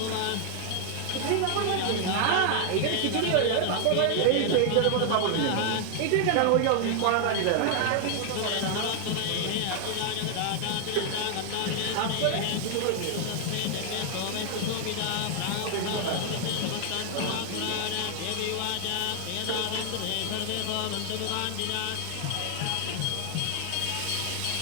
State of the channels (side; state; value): both; different; correlation 0.00